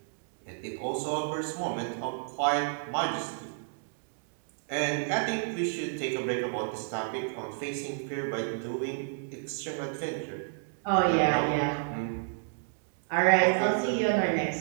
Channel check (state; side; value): silent; left; digital silence